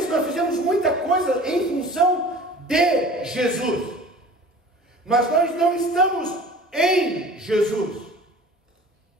nós fizemos muita coisa em função de Jesus. Mas nós não estamos em Jesus.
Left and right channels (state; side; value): normal; both; correlation 0.43